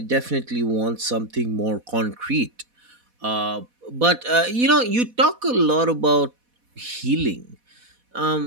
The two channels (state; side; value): late; left; 4.1 ms